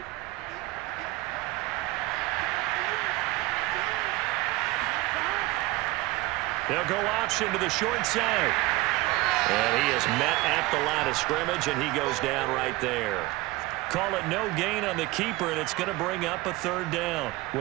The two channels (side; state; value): left; quieter; 20.0 dB